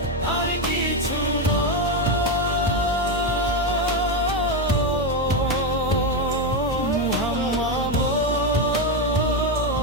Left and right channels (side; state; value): both; normal; correlation 0.08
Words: আর কিছু নয়। মুহাম্মদ